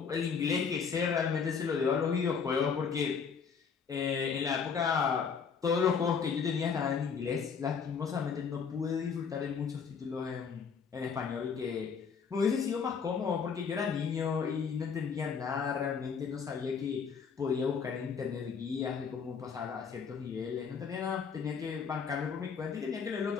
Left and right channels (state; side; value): quieter; right; 6.2 dB